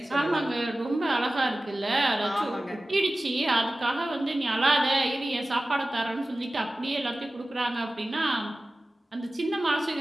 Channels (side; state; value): both; normal; correlation 0.96